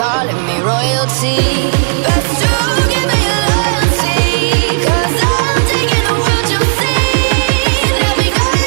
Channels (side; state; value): left; silent; digital silence